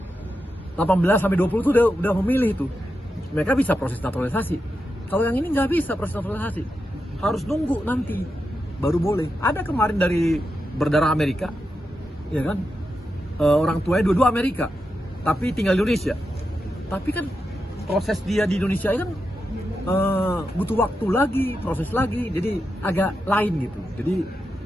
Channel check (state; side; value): normal; both; correlation 0.88